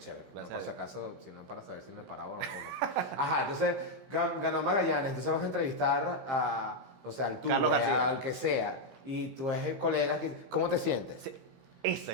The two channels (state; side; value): late; left; 16 ms